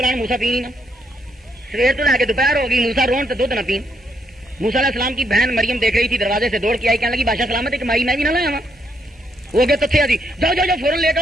موسیٰ پی نہیں نا. سویر تو لے کے دوپہر ہو گئی, موسیٰ رون تو دودھ نہ پین. موسیٰ علیہ السلام کی بہن مریم دیکھ رہی تھی, دروازے سے دوڑ کے آئی, کہنے لگی بادشاہ سلامت ایک مائی میں بھی نہ لایا ہوں. وہ گئے تو تھے جی, جاؤ جاؤ جاؤ فوراً لے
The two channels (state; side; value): normal; both; correlation 0.76